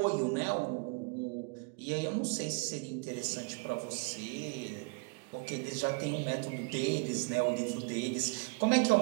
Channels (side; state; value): left; quieter; 32.6 dB